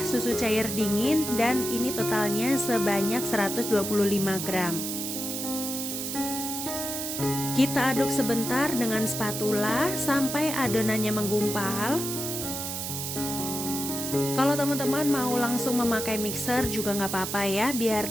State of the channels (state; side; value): noise; right; hiss, 4 dB below the sound